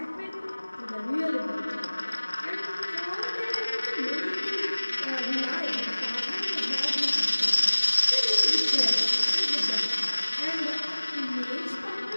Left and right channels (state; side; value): inverted; both; correlation -1.00